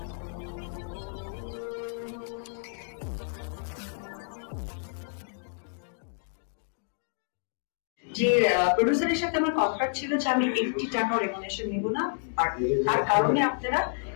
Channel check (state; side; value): silent; right; digital silence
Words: প্রডিউসারের সাথে আমার কন্ট্রাক্ট ছিল যে আমি 80 টাকা রেমুনেশন নিব না, আর তার কারণে আপনারা